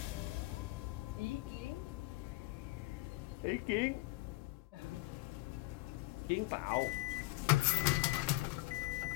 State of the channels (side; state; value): right; quieter; 20.4 dB